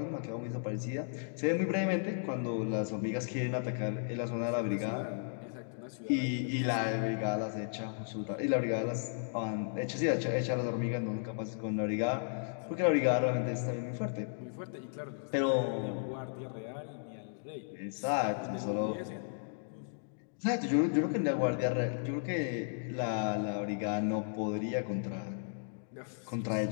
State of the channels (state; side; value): silent; right; digital silence